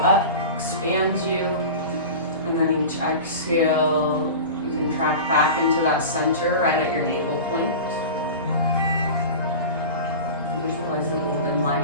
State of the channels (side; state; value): both; inverted; correlation -0.32